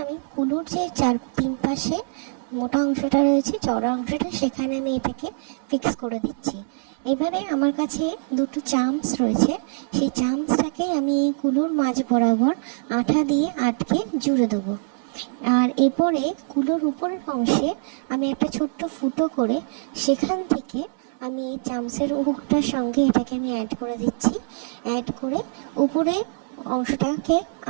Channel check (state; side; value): silent; left; 63 dB below the other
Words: আমি কুলোর যে তিন পাশে মোটা অংশটা রয়েছে, চওড়া অংশটা, সেখানে আমি এটাকে ফিক্স করে দিচ্ছি। এবারে আমার কাছে দুটো চামচ রয়েছে, সেই চামচটাকে আমি এই কুলোর মাঝ বরাবর আঠা দিয়ে আটকে জুড়ে দেবো। আর এরপরে কুলোর উপরের অংশে আমি একটা ছোট্ট ফুটো করে সেখান থেকে আমি এই চামচের হুকটার সঙ্গে এটাকে আমি অ্যাড করে দিচ্ছি। অ্যাড করে উপরে অংশটাকে